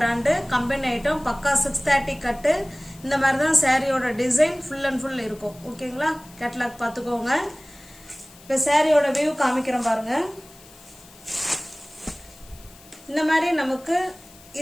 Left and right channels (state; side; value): noise; left; hiss, 23 dB below the sound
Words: கம்பெனி ஐட்டம் பக்கா 630 கட்டு. இந்த மாதிரி தான் சாரியோட டிசைன் ஃபுல் அண்ட் ஃபுல் இருக்கும் ஓகேங்களா. கேட்லாக் பார்த்துக்கோங்க. இப்போ சாரியோட வியூ காமிக்கிறோம் பாருங்க. இந்த மாதிரி நமக்கு